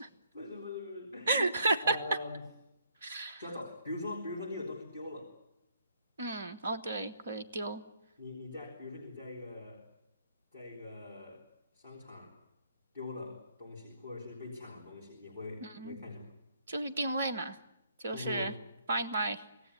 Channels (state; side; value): inverted; both; correlation -0.68